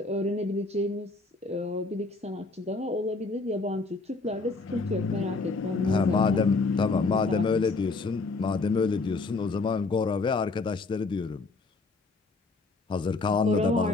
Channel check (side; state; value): right; quieter; 3.7 dB